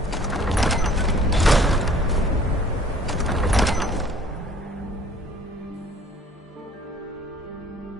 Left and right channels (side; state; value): both; normal; correlation 0.53